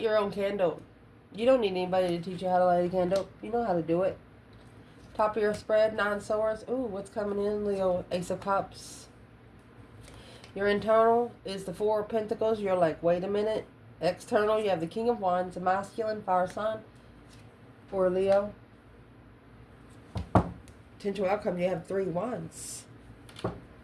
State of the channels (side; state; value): both; identical; correlation 1.00